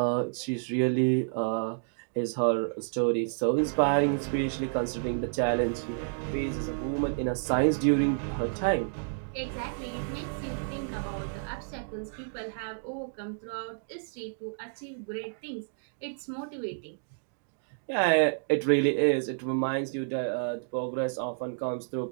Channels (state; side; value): silent; left; digital silence